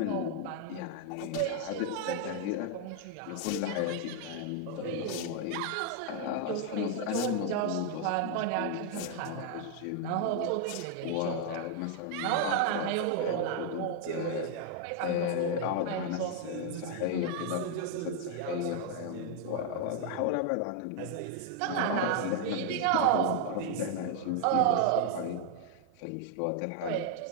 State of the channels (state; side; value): different; both; correlation 0.00